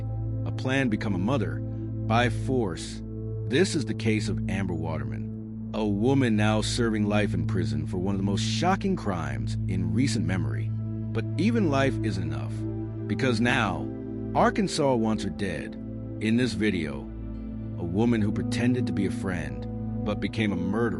a plan to become a mother by force. This is the case of Amber Waterman, a woman now serving life in prison for one of the most shocking crimes in recent memory. But even life isn't enough, because now Arkansas wants her dead. In this video, a woman who pretended to be a friend but became a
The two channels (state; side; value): identical; both; correlation 1.00